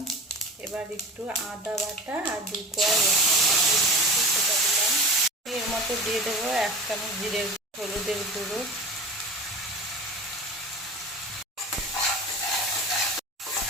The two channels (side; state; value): both; normal; correlation 0.33